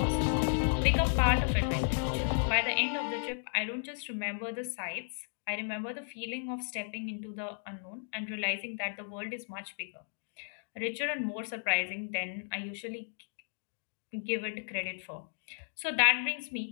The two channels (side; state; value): right; silent; digital silence